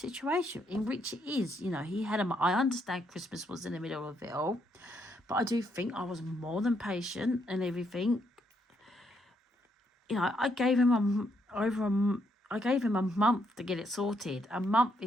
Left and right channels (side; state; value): both; normal; correlation 0.75